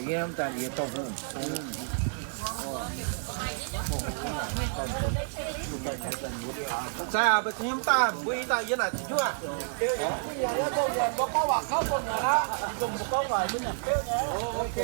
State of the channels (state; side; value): silent; left; 58 dB below the other